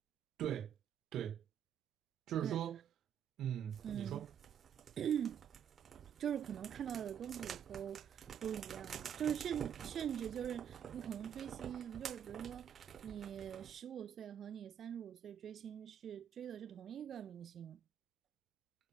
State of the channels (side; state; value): left; quieter; 9.0 dB